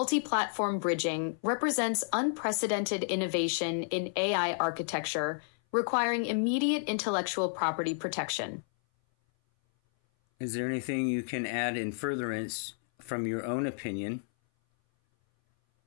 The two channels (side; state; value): right; silent; 57 dB below the other